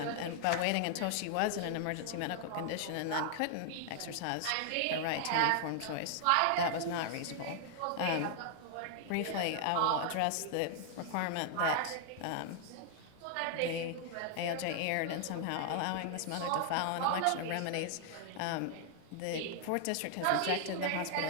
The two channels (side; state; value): both; different; correlation 0.00